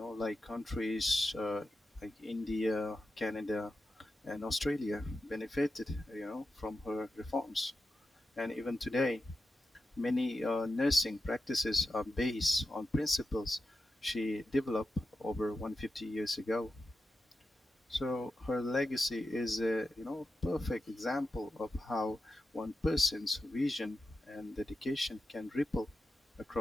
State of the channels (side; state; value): both; normal; correlation 0.90